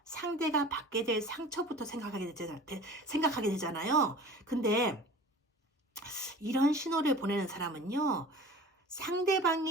상대가 받게 될 상처부터 생각하게 되잖아요. 근데 이런 신호를 보내는 사람은요,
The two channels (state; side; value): normal; both; correlation 0.42